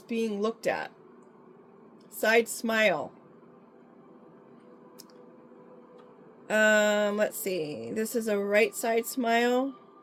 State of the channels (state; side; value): identical; both; correlation 1.00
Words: being looked at. Side smile. Let's see. This is a right side smile.